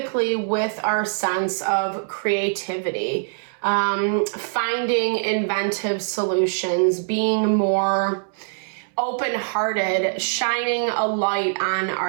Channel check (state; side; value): silent; left; 63 dB below the other